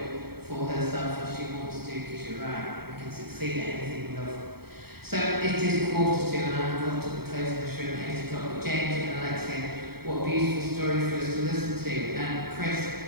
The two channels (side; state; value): left; late; 0.95 ms